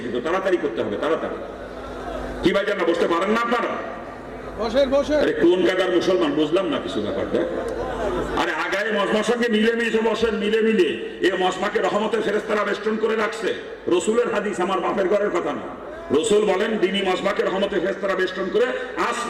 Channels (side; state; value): both; identical; correlation 1.00